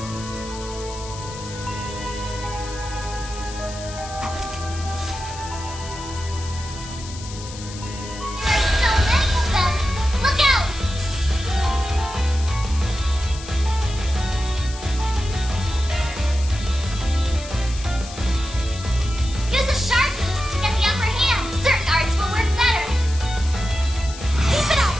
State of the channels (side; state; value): left; noise; hiss, 14 dB below the sound